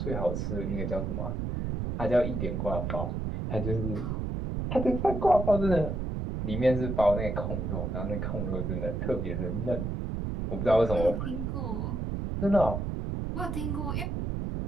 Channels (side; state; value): right; noise; rumble, 2 dB below the sound